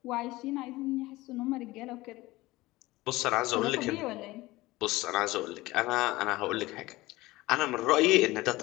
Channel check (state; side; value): quieter; right; 19.5 dB